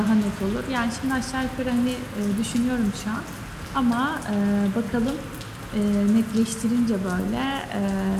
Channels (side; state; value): both; identical; correlation 1.00